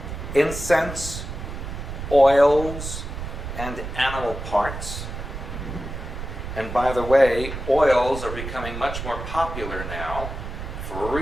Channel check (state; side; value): noise; right; rumble, 7 dB below the sound